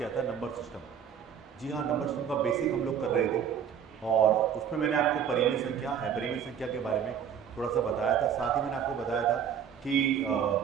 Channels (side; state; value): left; quieter; 8.2 dB